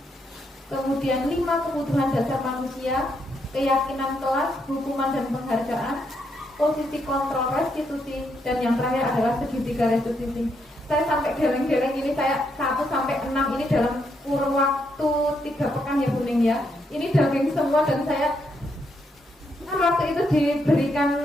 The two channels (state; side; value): normal; both; correlation 0.78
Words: kemudian 5 kebutuhan dasar manusia, keyakinan kelas, hukuman dan penghargaan, posisi kontrol restitusi, dan yang terakhir adalah segitiga restitusi. Saya sampai geleng-geleng ini, saya 1 sampai 6 ini dalam kurun waktu 3 pekan ya Bu Ning ya. Ini daging semua dan saya waktu itu